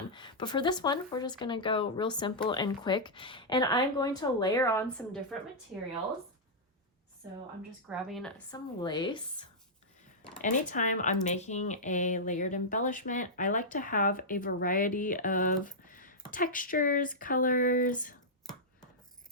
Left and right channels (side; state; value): both; normal; correlation -0.09